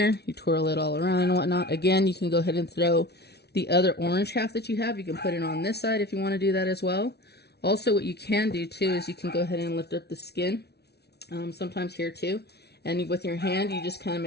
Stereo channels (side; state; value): right; late; 0.48 ms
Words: you twirl it all around and whatnot. Again, you can go ahead and throw the other orange half that you have. You can put it on this side if you want to do that as well. Also, what you can do too is you can go ahead and lift up the skin, sometimes here too. And with your hand, you just kind of